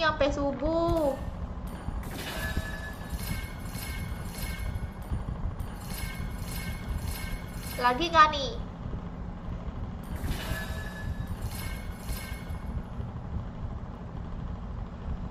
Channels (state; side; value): identical; both; correlation 1.00